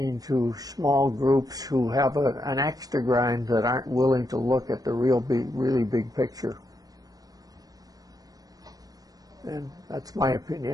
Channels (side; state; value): left; late; 0.18 ms